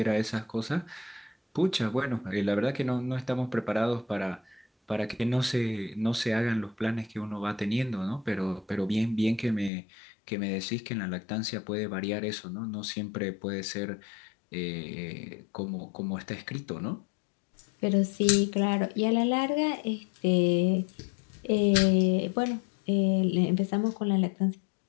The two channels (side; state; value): right; drops out; at 9.7 s